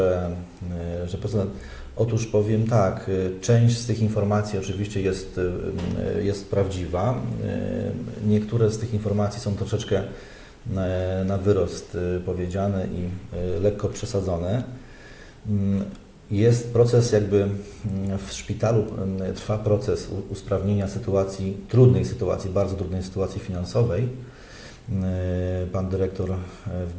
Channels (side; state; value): both; identical; correlation 1.00